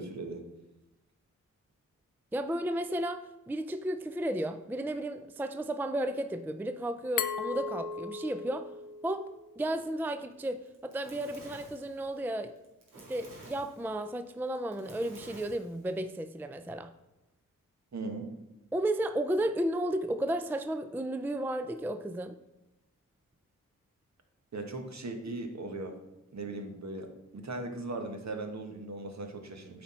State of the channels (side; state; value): both; normal; correlation 0.69